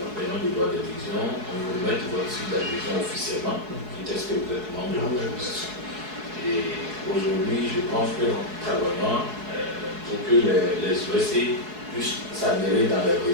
paiement du droit d'adhésion, on vous remet votre suite d'adhésion officiellement, qui teste que vous êtes membre de l'organisation. Et aujourd'hui, je pense que nous travaillons pour que les OSC puissent s'adhérer dans les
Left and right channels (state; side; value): late; left; 4.7 ms